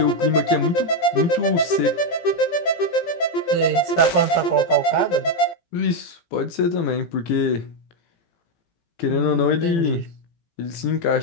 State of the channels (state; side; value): late; right; 18 ms